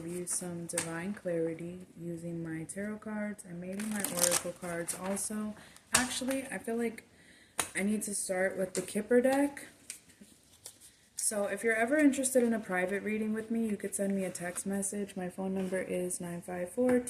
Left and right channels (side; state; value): both; identical; correlation 1.00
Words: you some divine clarity using my tarot cards and maybe my oracle cards also. Actually, I feel like I need to start with the Kipper deck. So if you're ever interested in a private reading with me, you could send me a text message. My phone number is